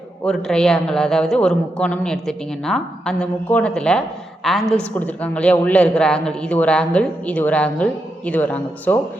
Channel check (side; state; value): both; normal; correlation 0.84